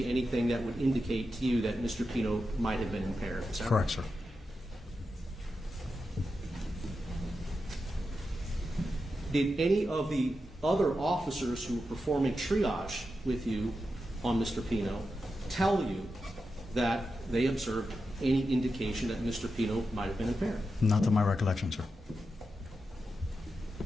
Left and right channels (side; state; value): both; normal; correlation 0.89